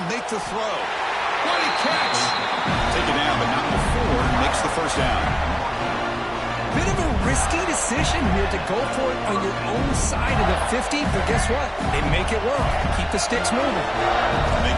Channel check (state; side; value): identical; both; correlation 1.00